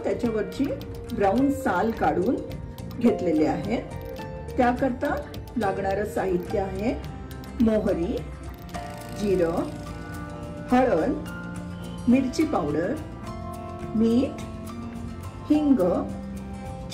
त्याच्यावरची ब्राउन साल काढून घेतलेले आहेत। त्याकरता लागणारे साहित्य आहे मोहरी, जिरं, हळद, मिरची पावडर, मीठ, हिंग,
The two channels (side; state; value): both; identical; correlation 1.00